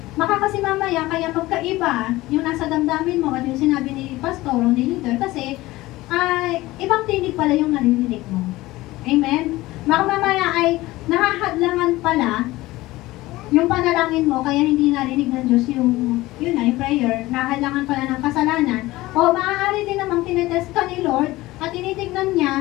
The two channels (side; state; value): right; quieter; 18.5 dB